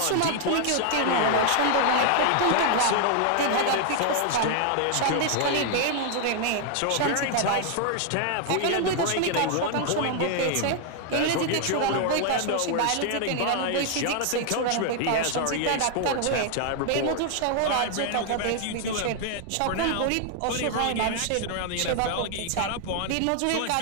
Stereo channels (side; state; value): both; different; correlation 0.00